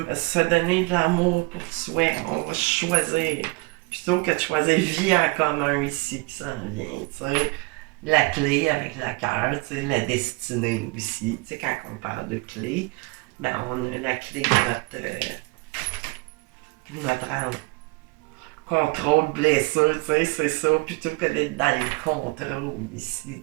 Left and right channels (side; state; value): left; quieter; 26.4 dB